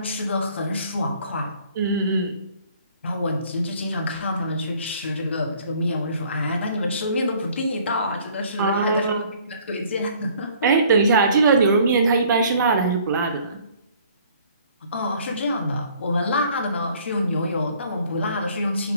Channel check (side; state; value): both; inverted; correlation -0.57